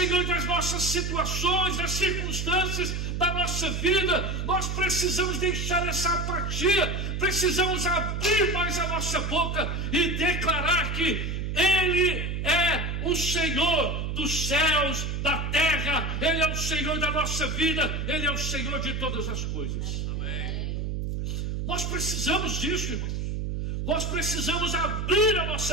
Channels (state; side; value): noise; right; hum, 2 dB below the sound